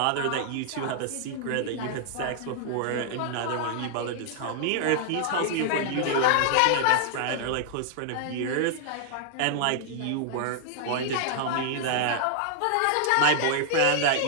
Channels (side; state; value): both; different; correlation -0.01